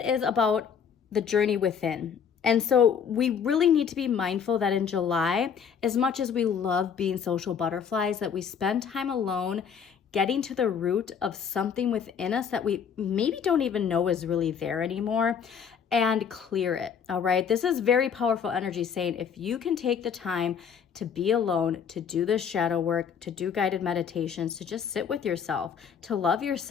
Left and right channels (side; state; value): right; quieter; 7.2 dB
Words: is about the journey within. And so we really need to be mindful that in July, as much as we love being social butterflies, that we spend time alone getting to the root of something within us that we maybe don't even know is really there anymore, and clear it, all right? This is very powerful energy saying if you can take the time to be alone, to do this shadow work, to do guided meditations, to just sit with yourself, to love